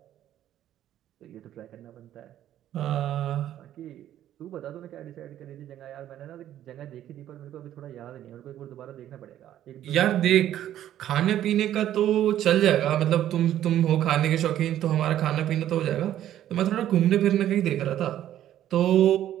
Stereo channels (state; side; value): quieter; left; 11.9 dB